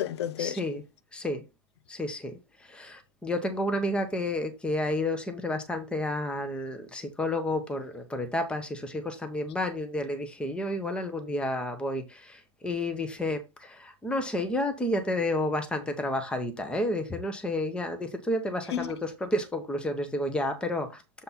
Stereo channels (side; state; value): both; normal; correlation 0.57